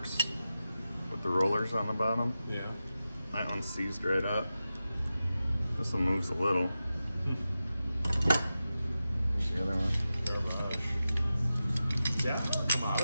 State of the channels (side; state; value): both; inverted; correlation -0.92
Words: with the rollers on the bottom. Yeah. That one's seized right up. This one moves a little. Here's the other one. Garbage. Yeah, come on.